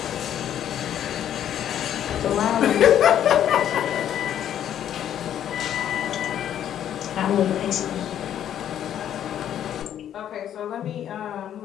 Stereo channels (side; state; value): right; quieter; 10.4 dB